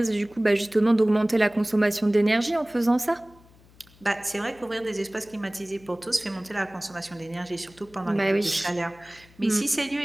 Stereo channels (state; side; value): noise; left; hum, 27 dB below the sound